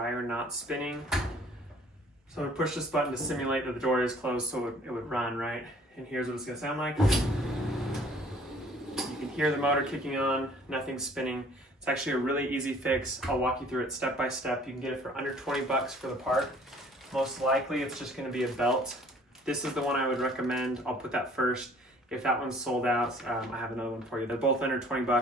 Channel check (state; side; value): normal; both; correlation 0.55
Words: not spinning. So I push this button to simulate that the door is closed so it would run, right? And here's what it's gonna sound like. You can hear the motor kicking on, nothing's spinning. It's actually a really easy fix. I'll walk you through it step by step. You can get it for under 20 bucks for the part. Most likely it's just gonna be a belt. This is the one I would recommend. I'll put that first. If that one's sold out, I have another one for you. They're both under 20